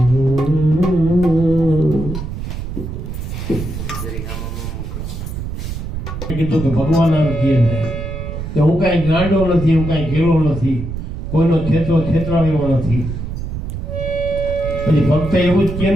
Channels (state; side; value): noise; right; rumble, 6 dB below the sound